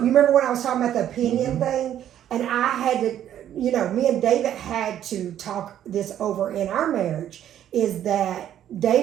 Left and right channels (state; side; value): quieter; left; 10.9 dB